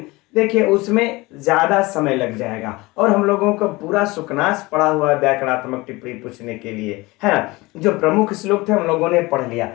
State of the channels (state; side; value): quieter; right; 22.1 dB